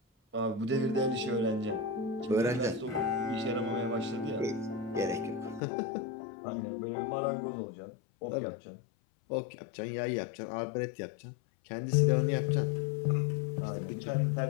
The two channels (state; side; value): drops out; right; at 5.6 s